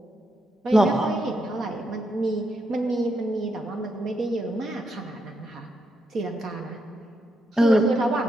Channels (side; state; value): both; normal; correlation 0.81